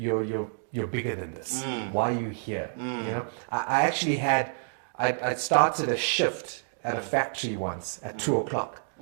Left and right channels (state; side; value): silent; left; digital silence